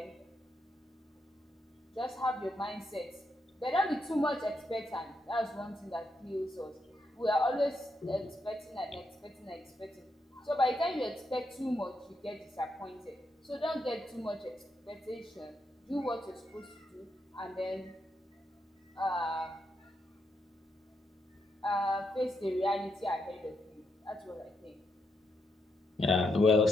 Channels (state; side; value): normal; both; correlation 0.81